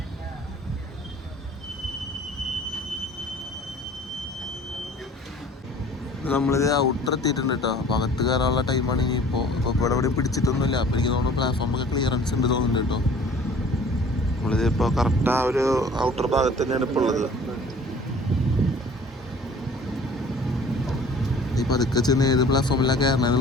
നമ്മളിത് ഔട്ടർ എത്തിയിട്ടുണ്ട് കേട്ടോ. അപ്പോൾ അകത്ത് കയറാനുള്ള ടൈമാണ് ഇനിയിപ്പോൾ. ഇപ്പോൾ ഇവിടെ എവിടെയും പിടിച്ചിട്ടൊന്നുമില്ല. അപ്പോൾ എനിക്ക് തോന്നുന്നു പ്ലാറ്റ്ഫോമൊക്കെ ക്ലിയറൻസ് ഉണ്ട് തോന്നുന്നുണ്ട് കേട്ടോ. നമ്മളിത് ഇപ്പോൾ കറക്റ്റ് ആ ഒരു ഔട്ടർ ഭാഗത്ത് തന്നെയാണ് ഇപ്പോൾ ഉള്ളത്. ഈ പതുക്കെ ചെന്ന് ഏത് പ്ലാറ്റ്ഫോമിലാണ്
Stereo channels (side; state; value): both; normal; correlation 0.49